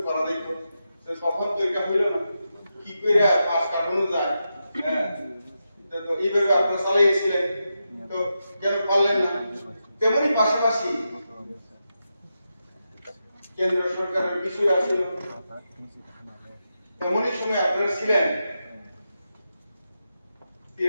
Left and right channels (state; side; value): inverted; both; correlation -0.88